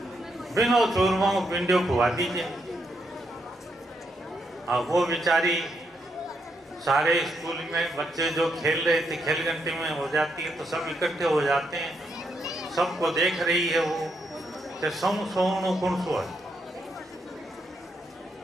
बिना चूरमा को पिंडियो खुआ दीजिए। अब वो बेचारी सारे स्कूल में बच्चे जो खेल रहे थे, खेल घंटे में हो जाती है तो सब इकट्ठे हो जाते हैं, सबको देख रही है वो कि सोनू कौन सो है।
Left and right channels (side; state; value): both; normal; correlation 0.79